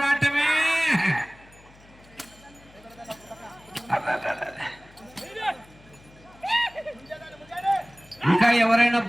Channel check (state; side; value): noise; left; hum, 25 dB below the sound